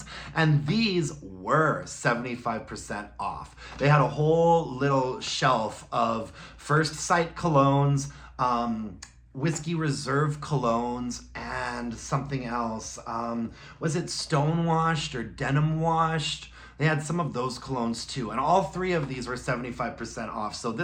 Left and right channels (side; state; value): both; identical; correlation 1.00